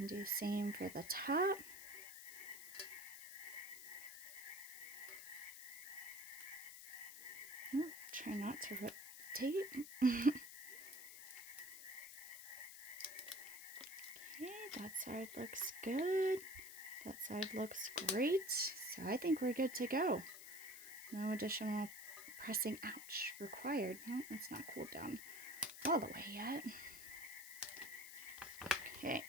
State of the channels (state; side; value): noise; left; hiss, 12 dB below the sound